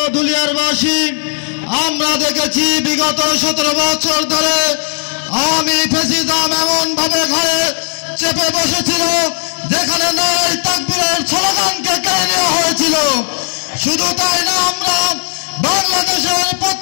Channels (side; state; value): right; silent; digital silence